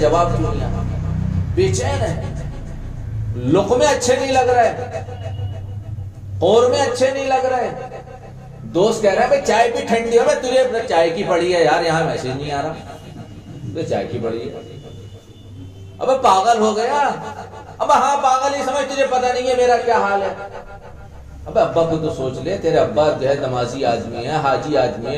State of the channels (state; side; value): identical; both; correlation 1.00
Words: کیوں نہیں آیا، بے چین ہے، لقمے اچھے نہیں لگ رہے، قورمے اچھے نہیں لگ رہے۔ دوست کہہ رہا ہے بھائی چائے بھی ٹھنڈی ہو، میں تجھے چائے کی پڑی ہے یار، یہاں میسج نہیں آ رہا، تو چائے کی پڑی ہے۔ ابے پاگل ہو گیا، اب ہاں پاگل ہی سمجھ، تجھے پتہ نہیں ہے میرا کیا حال ہے۔ اب ابا کو تو سوچ لے، تیرے ابا جو ہے نمازی آدمی ہے، حاجی آدمی